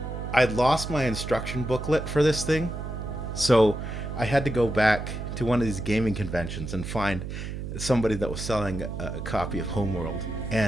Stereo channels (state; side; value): noise; right; hum, 6 dB below the sound